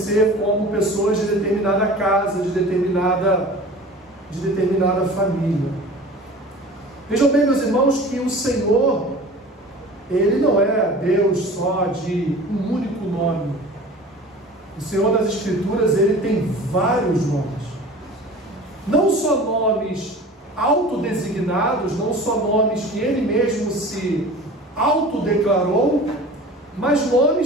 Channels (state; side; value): normal; both; correlation 0.40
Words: como pessoas de determinada casa, de determinada família. Vejam bem, meus irmãos, que o Senhor, Ele não é Deus só de um único nome. O Senhor das Escrituras, Ele tem vários nomes. Não só nomes autodesignados, não só nomes que Ele mesmo se autodeclarou, mas